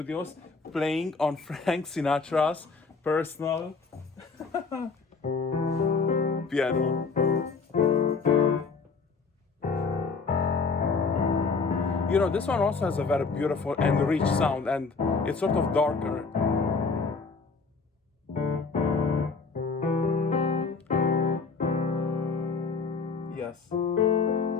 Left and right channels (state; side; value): quieter; right; 4.6 dB